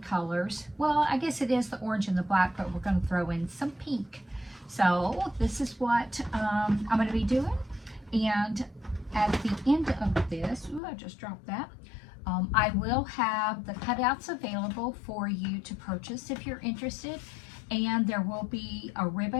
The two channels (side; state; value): right; drops out; at 10.8 s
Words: colors. Well, I guess it is the orange and the black, but we're going to throw in some pink. So this is what I'm going to be doing. And at the end of this, ooh, I just dropped that. I will have the cutouts available for you to purchase if you're interested. And there will be a